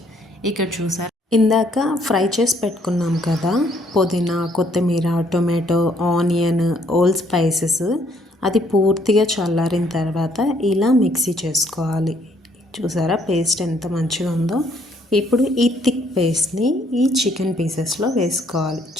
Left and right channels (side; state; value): both; normal; correlation 0.66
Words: ఇక్కడ చూసారా, ఇందాక ఫ్రై చేసి పెట్టుకున్నాం కదా పుదీనా కొత్తిమీర టొమాటో ఆనియన్ ఓల్ స్పైసెస్, అది పూర్తిగా చల్లారిన తర్వాత ఇలా మిక్సీ చేసుకోవాలి. చూసారా పేస్ట్ ఎంత మంచిగా ఉందో. ఇప్పుడు ఈ థిక్ పేస్ట్ని ఈ చికెన్ పీసెస్లో వేసుకోవాలి.